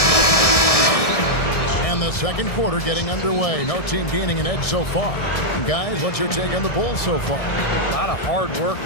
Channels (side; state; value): right; late; 1.6 ms